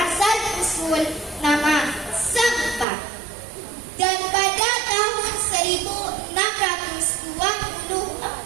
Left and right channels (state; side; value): drops out; left; at 2.9 s